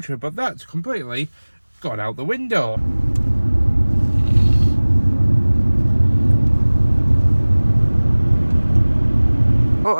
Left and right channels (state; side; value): inverted; both; correlation -1.00